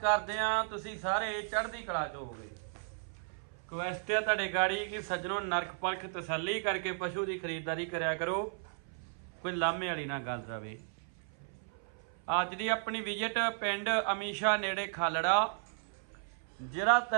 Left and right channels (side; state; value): left; silent; 55 dB below the other